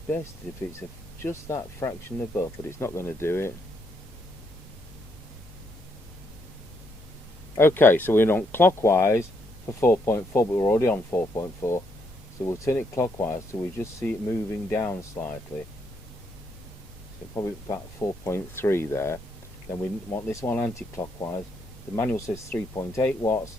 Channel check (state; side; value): noise; right; rumble, 19 dB below the sound